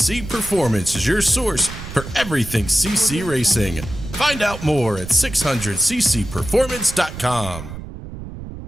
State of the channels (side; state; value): right; noise; rumble, 11 dB below the sound